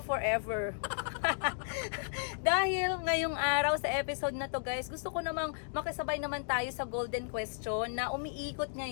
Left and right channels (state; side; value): silent; right; digital silence